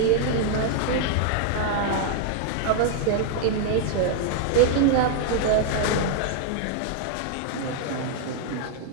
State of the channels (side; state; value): both; different; correlation 0.00